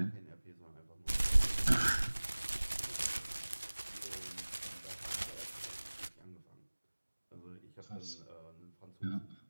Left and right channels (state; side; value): inverted; both; correlation -1.00